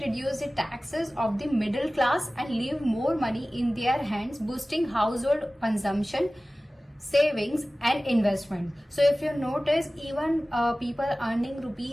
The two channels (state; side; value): normal; both; correlation 0.97